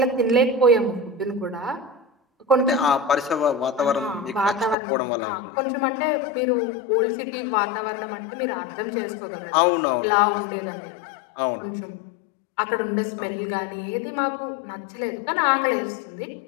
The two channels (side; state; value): right; drops out; at 4.8 s